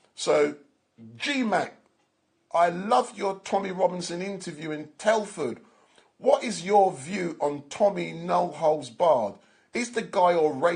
So, G-Mac, I loved your Tommy Robinson interview in Telford. What is your view on Tommy No Holds Barred? Is the guy a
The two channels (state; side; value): identical; both; correlation 1.00